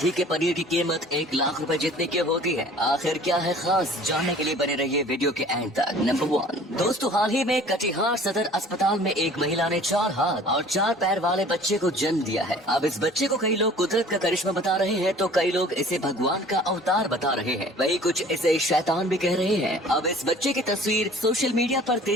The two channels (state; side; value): normal; both; correlation 0.49